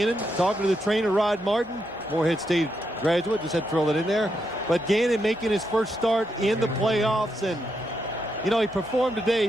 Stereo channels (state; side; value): normal; both; correlation 0.82